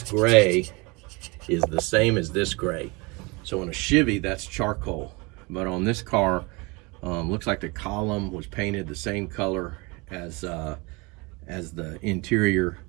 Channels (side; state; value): left; quieter; 26.9 dB